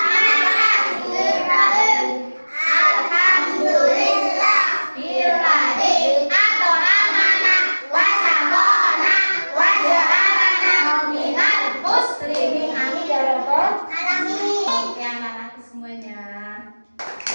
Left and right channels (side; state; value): both; inverted; correlation -1.00